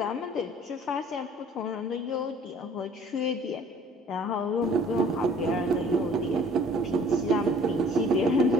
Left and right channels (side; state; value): both; normal; correlation 0.53